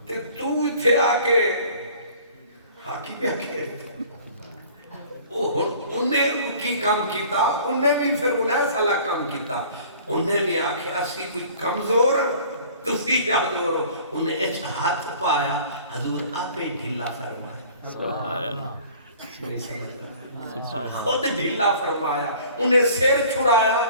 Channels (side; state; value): both; inverted; correlation -0.49